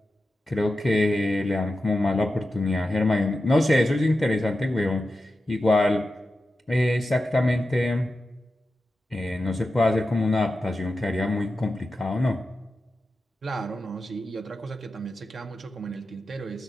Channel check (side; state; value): both; normal; correlation 0.91